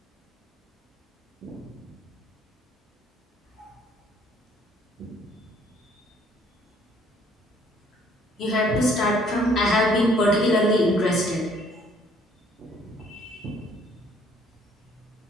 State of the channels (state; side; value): normal; both; correlation 0.61